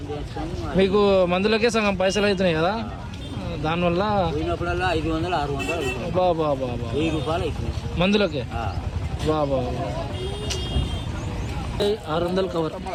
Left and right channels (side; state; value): both; identical; correlation 1.00